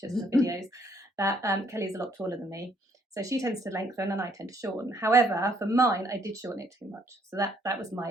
and the videos, that Kelly's a lot taller than me. So she tends to lengthen and I tend to shorten. However, for mine, I did shorten it too much. So that was my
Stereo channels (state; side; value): normal; both; correlation 0.68